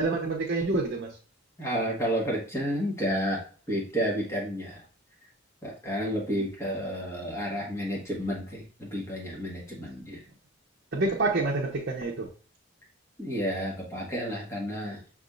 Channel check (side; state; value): both; normal; correlation 0.38